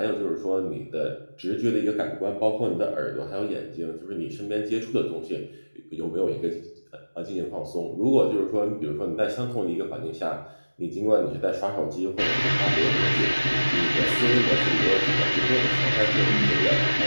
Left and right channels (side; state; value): both; inverted; correlation -1.00